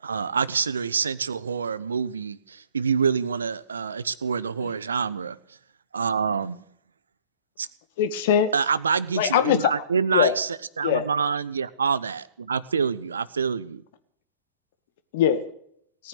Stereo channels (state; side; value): inverted; both; correlation -0.57